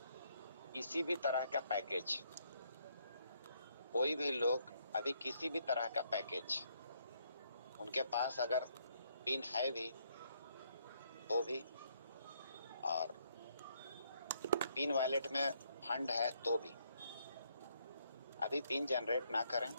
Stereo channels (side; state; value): both; inverted; correlation -0.71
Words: किसी भी तरह का पैकेज, उनके पास अगर पिन है भी तो भी, और पिन वैलेट में फंड है तो भी, अभी पिन जनरेट ना करें।